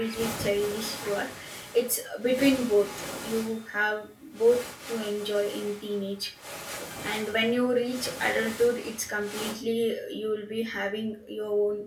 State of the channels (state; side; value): identical; both; correlation 1.00